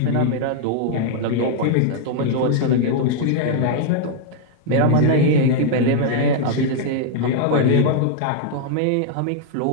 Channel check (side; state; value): both; different; correlation -0.01